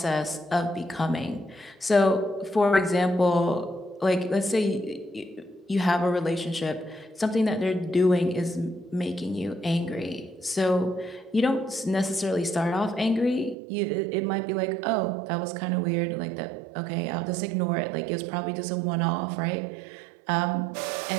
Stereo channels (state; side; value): drops out; left; at 13.6 s